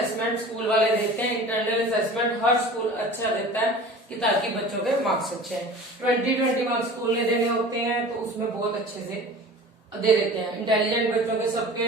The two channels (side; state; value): both; normal; correlation 0.40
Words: स्कूल वाले देते हैं। इंटरनल असेसमेंट हर स्कूल अच्छा देता है कि ताकि बच्चों के मार्क्स अच्छे हैं। 20 मार्क्स स्कूल ने देने होते हैं तो उसमें बहुत अच्छे से दे देते हैं। इंटेलिजेंट बच्चों के